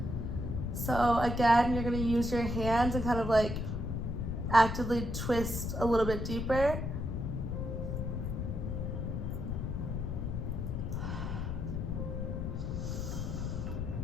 So again, you're gonna use your hands and kind of like actively twist a little bit deeper.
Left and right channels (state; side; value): noise; left; rumble, 2 dB below the sound